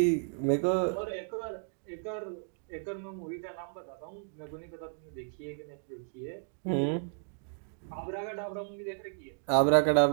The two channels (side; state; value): left; silent; 56 dB below the other